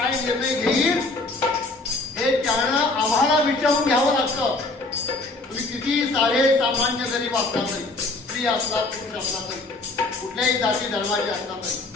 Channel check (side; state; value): right; quieter; 3.2 dB